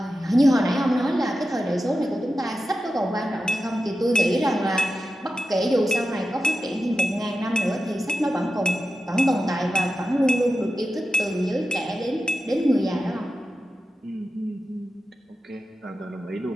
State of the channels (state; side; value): normal; both; correlation 0.92